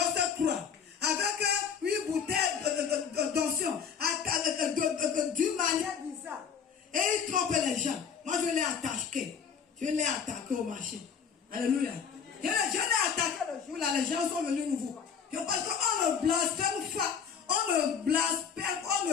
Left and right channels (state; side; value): quieter; right; 6.9 dB